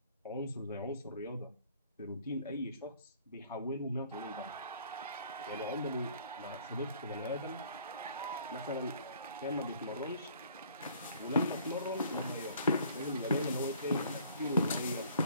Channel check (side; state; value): both; inverted; correlation -0.57